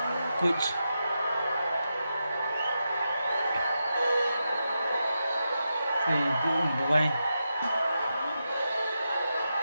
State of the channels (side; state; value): both; inverted; correlation -0.87